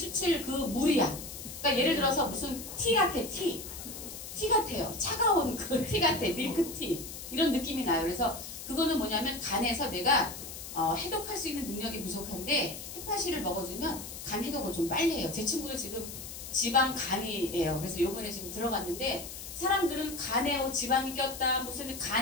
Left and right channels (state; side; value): noise; left; hiss, 10 dB below the sound